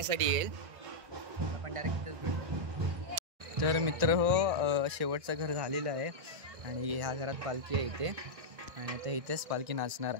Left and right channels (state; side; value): late; left; 1.6 ms